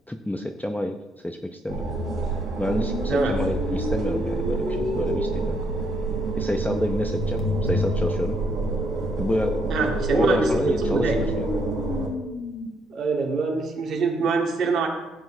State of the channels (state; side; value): normal; both; correlation 0.73